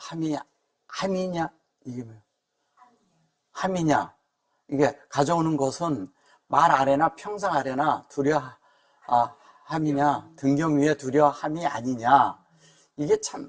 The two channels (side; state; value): both; identical; correlation 1.00